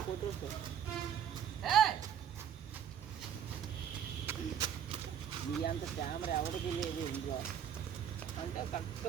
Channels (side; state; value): left; quieter; 9.0 dB